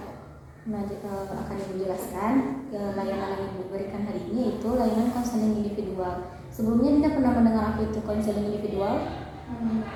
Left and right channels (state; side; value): identical; both; correlation 1.00